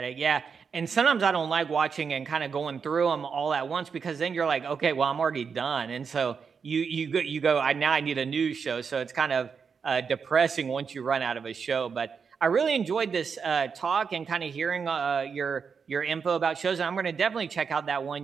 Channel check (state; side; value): quieter; left; 6.0 dB